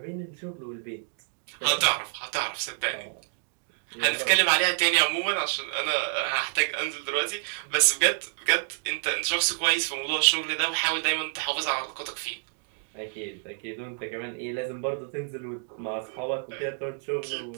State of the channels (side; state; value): left; silent; digital silence